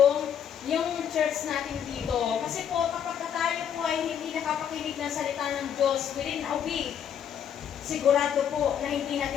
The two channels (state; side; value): quieter; right; 8.7 dB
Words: church natin dito. Kasi po, kapag tayo po ay hindi nakapakinig ng salita ng Diyos within a week, sigurado po na hindi